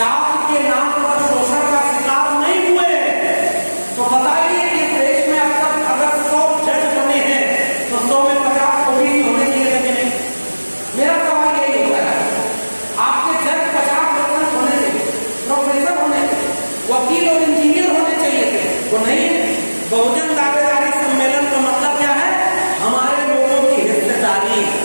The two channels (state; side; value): inverted; both; correlation -1.00